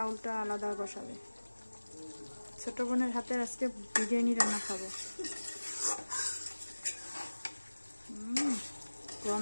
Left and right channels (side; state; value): both; inverted; correlation -1.00